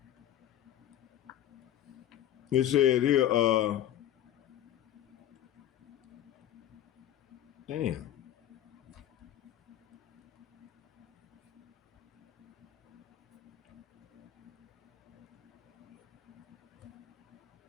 it said here, damn.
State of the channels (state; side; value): quieter; right; 11.6 dB